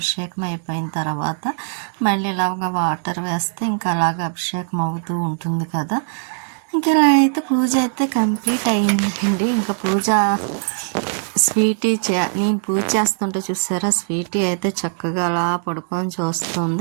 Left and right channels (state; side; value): silent; left; digital silence